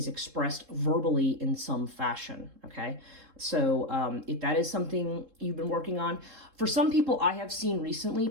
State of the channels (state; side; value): late; left; 3.7 ms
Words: expressed verbally in some fashion, okay? So if that is something you've been working on, for some people I have seen recently,